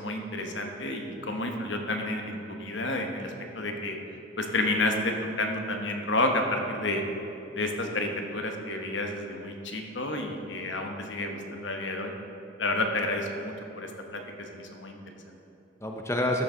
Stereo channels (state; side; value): normal; both; correlation 0.21